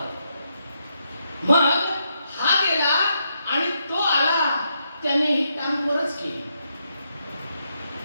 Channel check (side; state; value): both; inverted; correlation -0.80